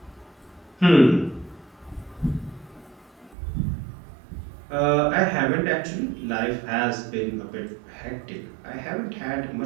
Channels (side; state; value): left; drops out; at 3.4 s